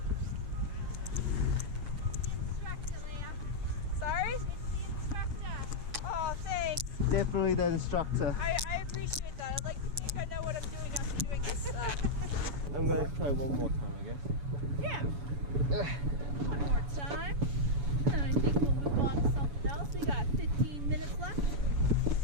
Sorry? It's the instructor. Oh, thanks. Definitely the instructor. I appreciate that. I'd like to think I know what I'm doing after doing this. I'm going to try one more time, I guess. Yeah. One more time. And I think we'll move on to something else. We got 15 minutes left.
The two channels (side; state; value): left; late; 7.0 ms